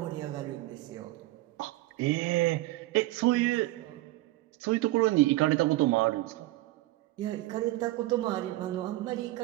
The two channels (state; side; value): quieter; left; 18.1 dB